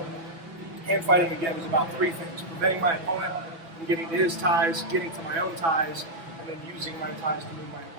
hand fighting again is about three things: preventing my opponent from getting to his ties, getting to my own ties, and then using my ties to move my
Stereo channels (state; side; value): late; left; 6.0 ms